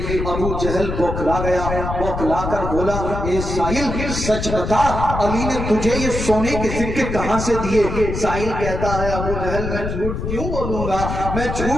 ابو جہل بوکھلا گیا، بوکھلا کر بولا اے سائل سچ بتا علی نے تجھے یہ سونے کے سکے کہاں سے دیے؟ سائل کہتا ہے ابو جہل میں جھوٹ کیوں بولوں گا، میں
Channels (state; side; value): noise; left; rumble, 4 dB below the sound